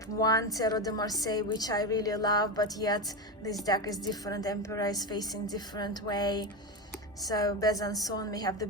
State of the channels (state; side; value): normal; both; correlation 0.17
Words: 1 Tarot de Marseille, which I really love, but yet this deck is different. Emperor is facing different way. So Besançon, we have the